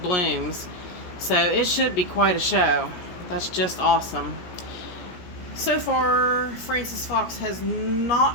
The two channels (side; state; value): right; late; 17 ms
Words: blooms. So it should be quite a show. That's just awesome. So far, Frances Fox has